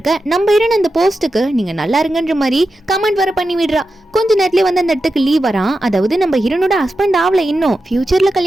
நம்ம ஹீரோயின் அந்த போஸ்ட்டுக்கு நீங்க நல்லா இருங்கன்ற மாதிரி கமெண்ட் வர பண்ணி விடுறா. கொஞ்ச நேரத்துல வந்து அந்த இடத்துக்கு லீவ் வரான். அதாவது நம்ம ஹீரோனோட ஹஸ்பண்ட் ஆவல, இன்னும் ஃபியூச்சர்ல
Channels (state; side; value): normal; both; correlation 0.90